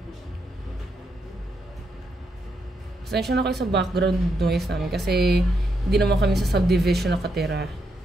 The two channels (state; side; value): normal; both; correlation 0.80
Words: Pasensya na kayo sa background noise namin kasi hindi naman kami sa subdivision nakatira.